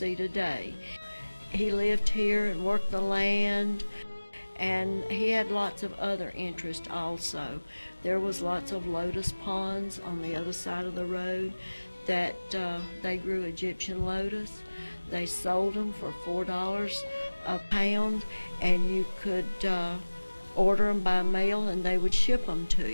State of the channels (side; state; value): both; inverted; correlation -1.00